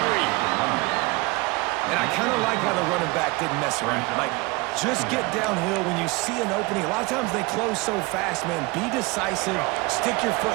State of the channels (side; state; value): left; quieter; 24.9 dB